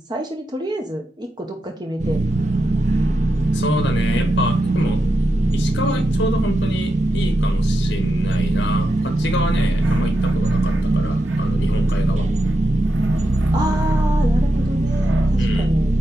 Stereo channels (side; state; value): both; normal; correlation 0.87